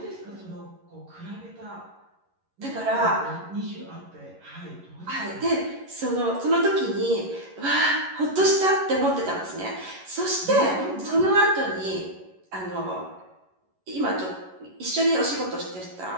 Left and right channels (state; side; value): late; left; 11 ms